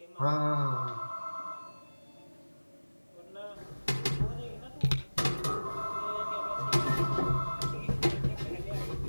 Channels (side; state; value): both; inverted; correlation -1.00